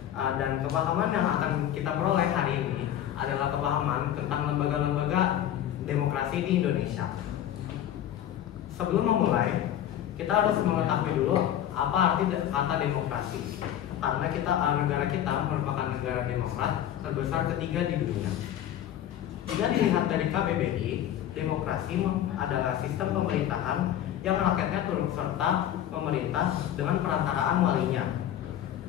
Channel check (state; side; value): quieter; right; 11.2 dB